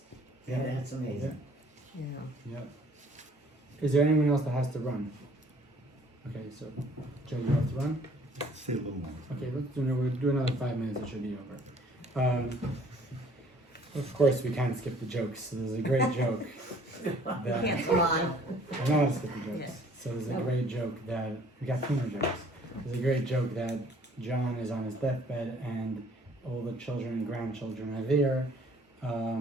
Yeah, that's amazing. yeah. Yeah. Is there anyone else that has to run? Okay, so Joe, you have to run? Say a little more. Okay, we'll do another 5 minutes, it should be over. Of course we can't skip the jokes, so there's a great joke that Can't come on. I know how to skip the jokes. Yeah. So there's a great joke that we got 2 more jokes. There's a great joke that John is on his deathbed and all the children and grandchildren are there,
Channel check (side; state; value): both; normal; correlation 0.57